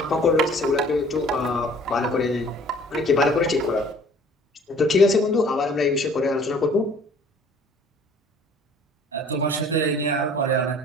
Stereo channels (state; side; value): normal; both; correlation 0.52